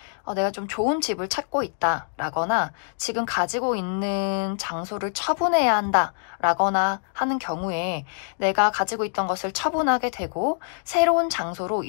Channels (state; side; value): silent; right; digital silence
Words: 내가 좀 좋은 집을 찾고 있다 라거나, 지금 가지고 있는 장소를 처분해야 한다 라거나 하는 경우에 내가 가지고 있던 것을 처분하게 되고 새로운 장소로